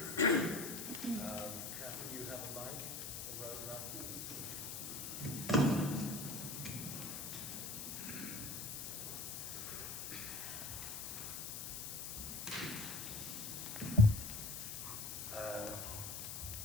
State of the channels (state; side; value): noise; left; hiss, 5 dB below the sound